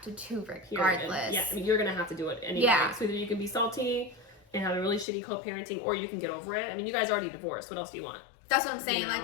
to do regardless. Yeah, I mean, you're gonna have to do it anyway. Yeah. So either you can be salty and have a really shitty co-parenting, or you can get over it. I mean, you guys already divorced. What else do you want? That's what I'm saying. You know? Like,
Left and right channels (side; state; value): right; drops out; at 5.1 s